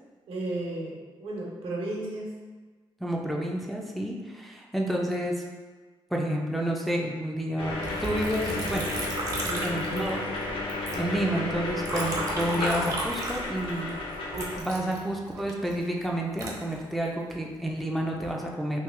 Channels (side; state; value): both; normal; correlation 0.68